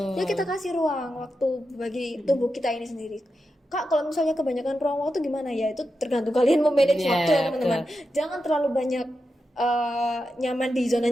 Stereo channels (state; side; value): normal; both; correlation 0.88